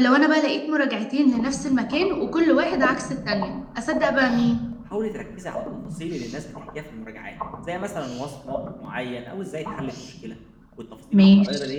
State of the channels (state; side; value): identical; both; correlation 1.00